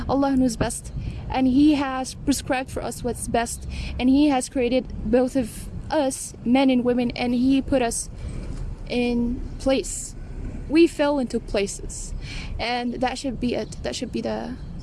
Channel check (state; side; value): identical; both; correlation 1.00